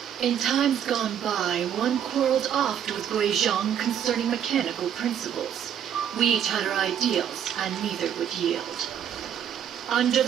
In times gone by, one quarreled oft with Gui Zhang concerning mechanical principles. We each had our ideals, and neither would yield. Under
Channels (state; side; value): quieter; left; 9.2 dB